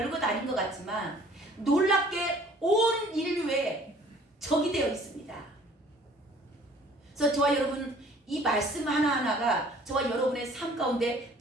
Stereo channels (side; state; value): both; normal; correlation 0.54